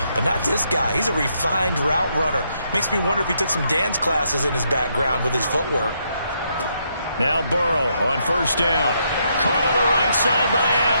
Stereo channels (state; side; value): inverted; both; correlation -0.76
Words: But not this guy. He's a refined route runner. Makes me wonder if he took some dance classes in his background with his footwork. Now Burrow on 1st down. Caught on the right side by